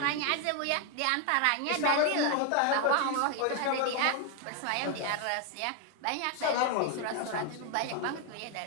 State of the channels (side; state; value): both; different; correlation 0.01